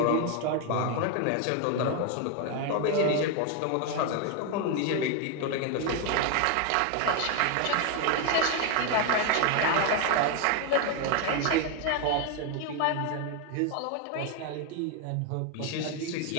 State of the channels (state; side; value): different; both; correlation 0.01